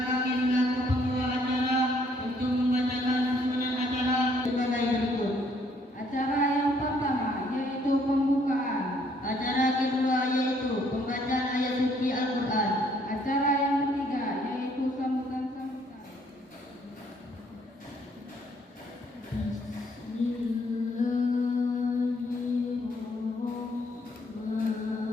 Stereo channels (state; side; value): normal; both; correlation 0.66